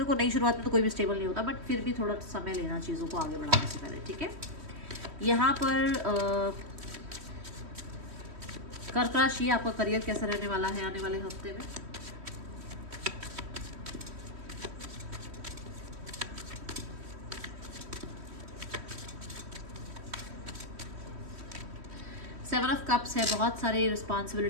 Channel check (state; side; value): late; left; 3.1 ms